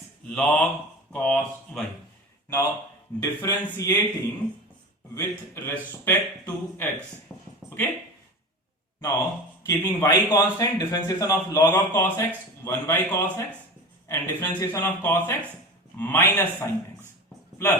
log cos y. Now differentiating with respect to x. Okay. Now keeping y constant, differentiation of log of cos x 1 by cos x, and differentiation of cos x minus sin x,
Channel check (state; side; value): normal; both; correlation 0.30